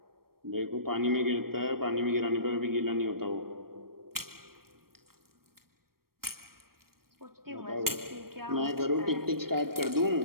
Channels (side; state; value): left; late; 0.94 ms